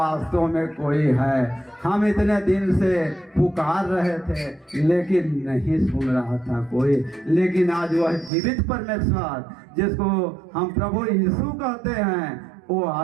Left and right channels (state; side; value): drops out; left; at 8.3 s